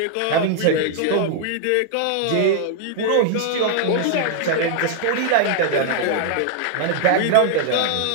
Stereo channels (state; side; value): different; both; correlation 0.00